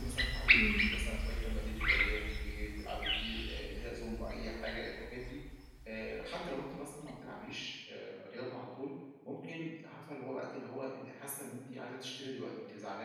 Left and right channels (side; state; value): both; identical; correlation 1.00